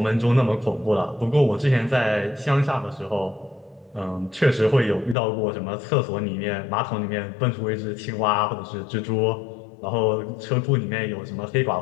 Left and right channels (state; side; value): drops out; right; at 5.2 s